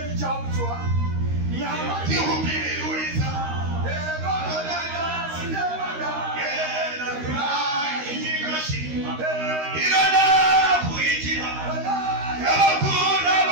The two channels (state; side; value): late; left; 13 ms